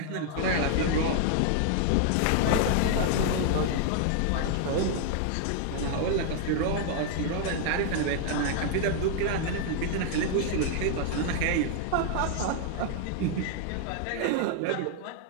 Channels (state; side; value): different; both; correlation 0.00